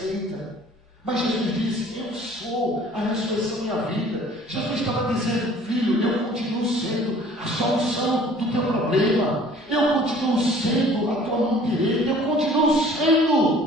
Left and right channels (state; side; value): normal; both; correlation 0.52